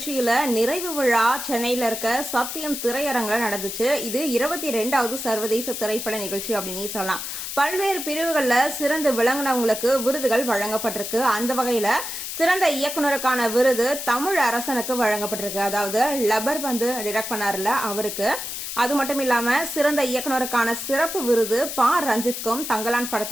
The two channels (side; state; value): left; noise; hiss, 6 dB below the sound